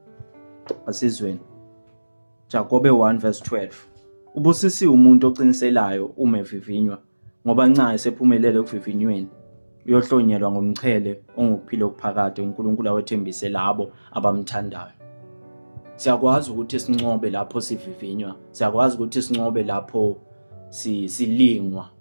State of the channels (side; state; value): both; inverted; correlation -1.00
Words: Asizweni. Jakobe 1:12. Ubusisiwe umuntu oqiniselayo uma evivinywa, ngoba nca esephumelele ekuvivinyweni uyohlonyelwa ngomchele ongukuphila okuphakade uNkulunkulu awethembise labo abamthandayo. Siyakwazi ukuthi sincobe lapho sivivinywa, siyakwazi ukuthi sincobe lapho silingwa